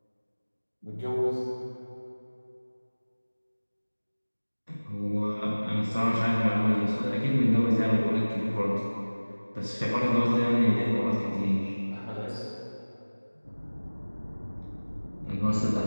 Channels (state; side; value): inverted; both; correlation -1.00